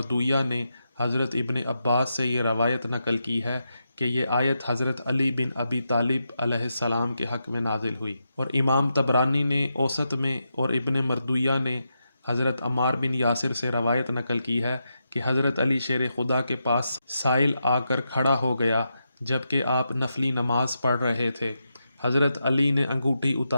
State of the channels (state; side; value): inverted; both; correlation -0.86